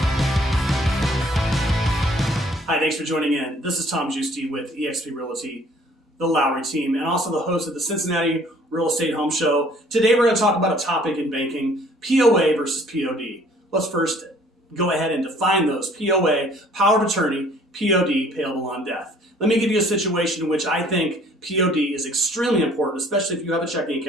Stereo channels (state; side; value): normal; both; correlation 0.57